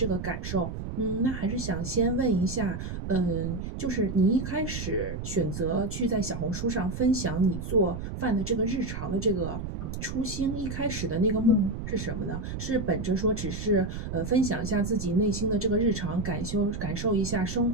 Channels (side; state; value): right; noise; rumble, 6 dB below the sound